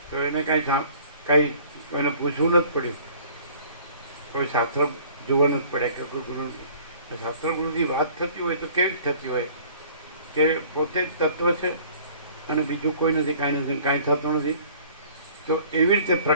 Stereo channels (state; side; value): inverted; both; correlation -0.52